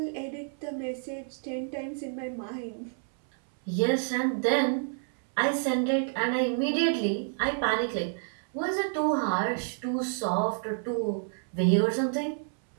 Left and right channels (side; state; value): left; silent; 58 dB below the other